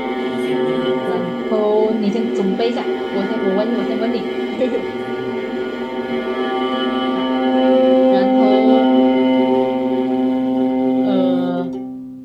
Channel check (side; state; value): both; identical; correlation 1.00